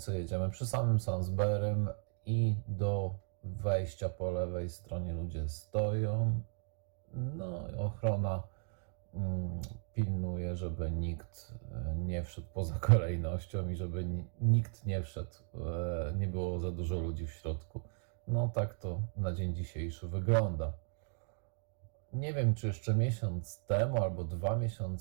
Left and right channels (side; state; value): left; silent; 54 dB below the other